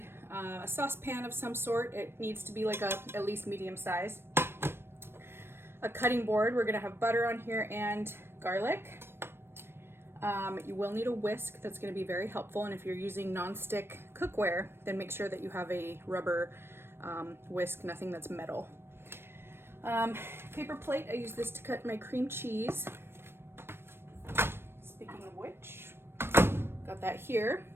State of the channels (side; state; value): left; late; 0.12 ms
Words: a saucepan of some sort. It needs to be like at least medium size. A cutting board. We're gonna have butter on here and garlic. You will need a whisk. That's gonna be very helpful, and if you're using non-stick cookware, then make sure that you have a rubber whisk, nothing that's metal. Paper plate, I use this to cut my cream cheese. Speaking of which, got that here.